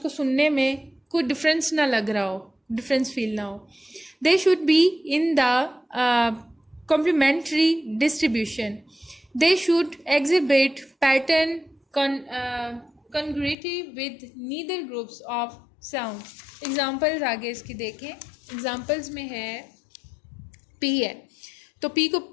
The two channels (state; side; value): drops out; right; at 13.6 s